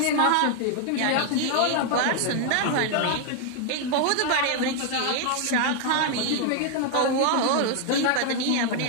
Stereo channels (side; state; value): both; different; correlation 0.00